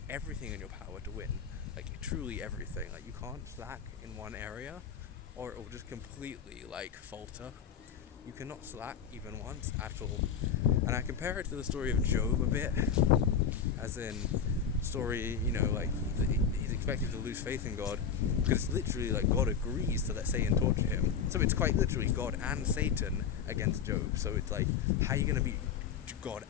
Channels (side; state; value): right; quieter; 7.1 dB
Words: everything in your power to win, like, truly everything. Like, you can't slack in one area, or it will just completely, like, falter. You cannot slack even once at all. And I compare it to the story of Job a bit, as in story, you know, like, he's expected to lose faith in God, because it's literally like God agrees to let Satan torture him. So it's quite literally God and Satan against Job. So it's like, how are you going to beat God